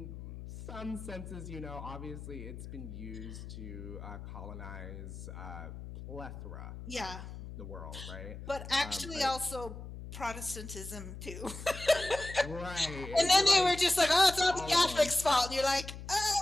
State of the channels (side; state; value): left; noise; hum, 11 dB below the sound